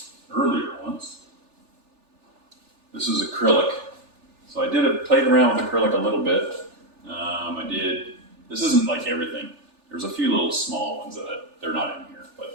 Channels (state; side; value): late; left; 3.4 ms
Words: earlier ones. This is acrylic. So I played around with acrylic a little bit. This isn't like everything. There's a few little small ones that they're not in here,